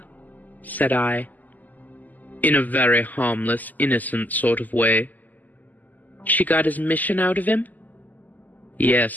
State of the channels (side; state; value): right; late; 0.082 ms